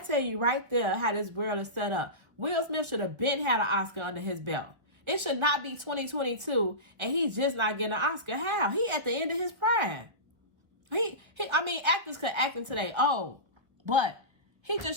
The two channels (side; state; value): left; late; 1.4 ms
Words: you right there how this world is set up. Will Smith should have been had an Oscar under his belt. It should not be 2022 and he's just not getting an Oscar. How? He at the end of his prime. I mean, actors could act until they old, but he